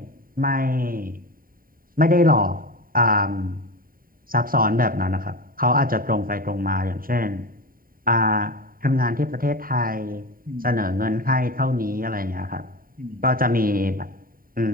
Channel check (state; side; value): late; left; 0.41 ms